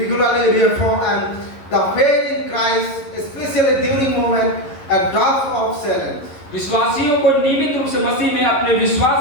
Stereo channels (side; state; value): right; late; 11 ms